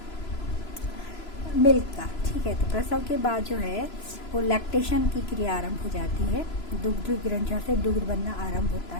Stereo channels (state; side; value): late; right; 3.0 ms